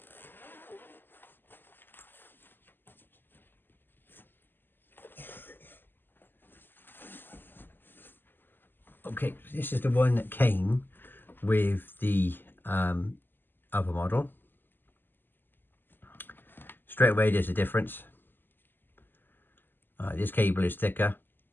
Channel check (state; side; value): late; right; 0.093 ms